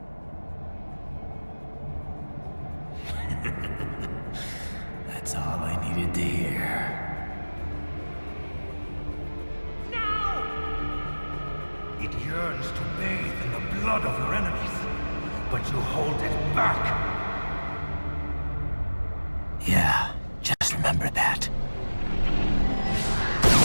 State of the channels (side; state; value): both; inverted; correlation -1.00